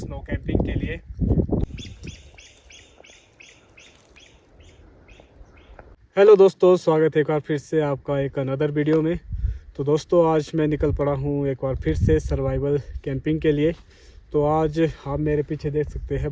कैंपिंग के लिए। हेलो दोस्तों, स्वागत है एक बार फिर से आपका एक अनदर वीडियो में। तो दोस्तों आज मैं निकल पड़ा हूँ एक बार फिर से सर्वाइवल कैंपिंग के लिए। तो आज आप मेरे पीछे देख सकते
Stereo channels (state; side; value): identical; both; correlation 1.00